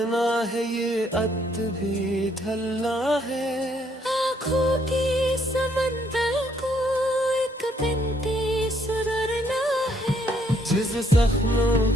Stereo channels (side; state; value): both; normal; correlation 0.69